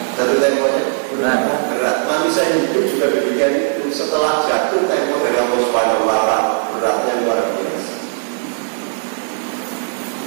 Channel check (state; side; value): silent; left; digital silence